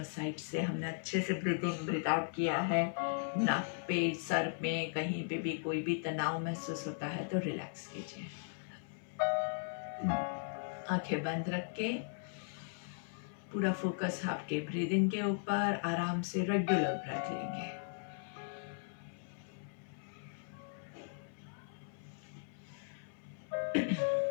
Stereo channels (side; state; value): right; silent; 53 dB below the other